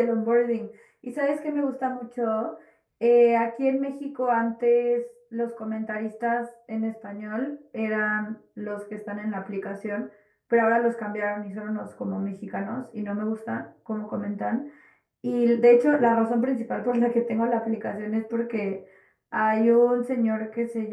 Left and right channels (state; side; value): identical; both; correlation 1.00